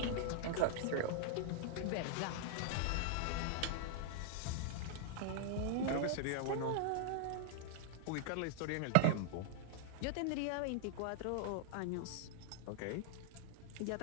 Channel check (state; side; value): different; both; correlation 0.00